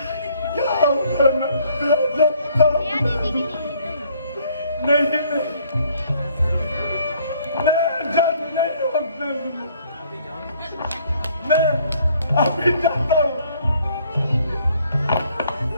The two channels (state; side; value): inverted; both; correlation -0.62